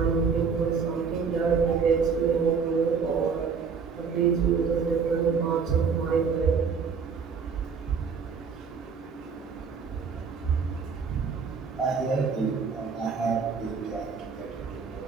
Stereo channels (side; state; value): left; quieter; 5.8 dB